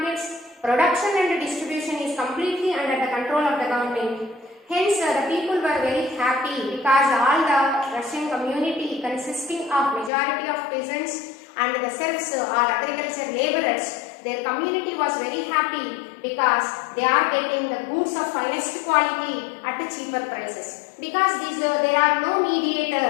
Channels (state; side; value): drops out; right; at 10.1 s